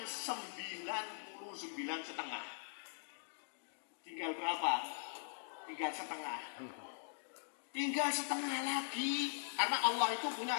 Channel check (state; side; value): silent; right; digital silence